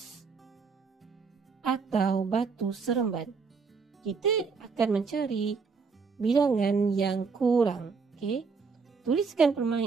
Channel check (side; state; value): left; quieter; 5.1 dB